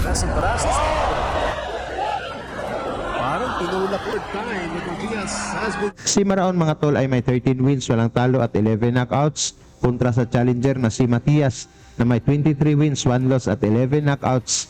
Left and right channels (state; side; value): identical; both; correlation 1.00